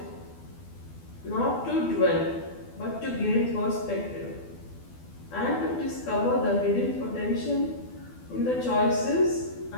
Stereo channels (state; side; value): late; right; 12 ms